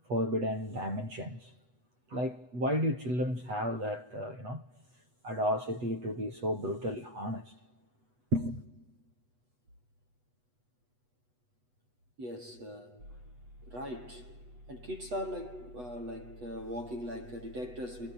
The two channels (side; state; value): left; late; 8.1 ms